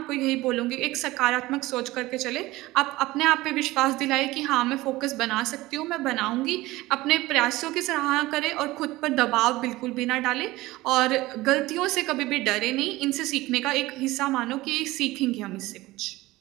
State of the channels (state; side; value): quieter; left; 18.9 dB